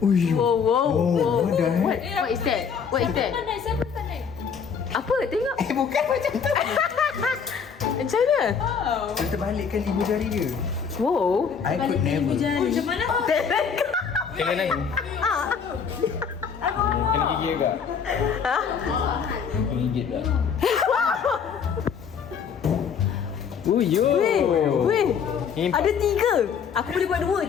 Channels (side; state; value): right; quieter; 6.6 dB